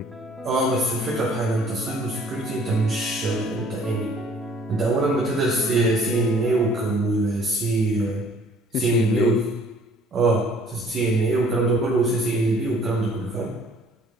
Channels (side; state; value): both; normal; correlation 0.56